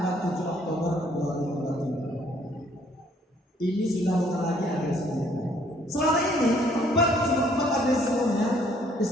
7 Oktober 2023. Ini sudah bukan lagi agresi militer. Selama ini 4 agresi sebelumnya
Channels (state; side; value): normal; both; correlation 0.63